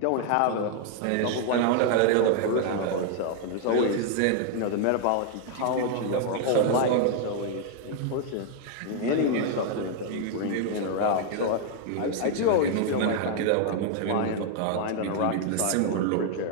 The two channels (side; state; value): both; different; correlation 0.00